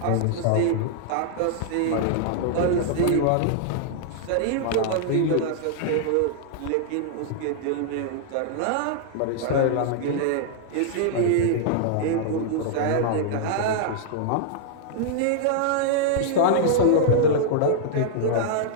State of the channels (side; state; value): both; different; correlation -0.01